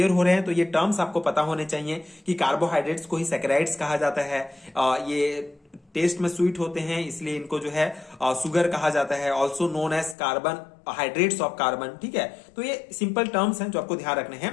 हो रहे हैं तो ये टर्म्स आपको पता होने चाहिए कि कार्बोहाइड्रेट्स को ही सैकेराइड्स कहा जाता है। ये टेस्ट में स्वीट होते हैं, इसलिए इनको जो है सुगर कहा जाता है। Also known as carbon, hydrates of carbon. ठीक है, तो ये सिंपल टर्म्स हैं जो आपको ध्यान रखने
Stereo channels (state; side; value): drops out; right; at 10.2 s